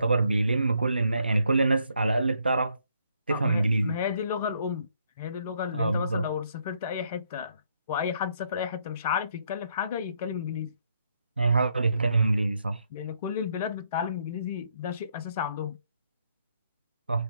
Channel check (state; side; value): inverted; both; correlation -0.72